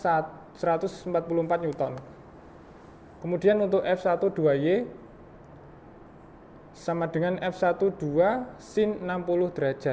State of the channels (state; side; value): identical; both; correlation 1.00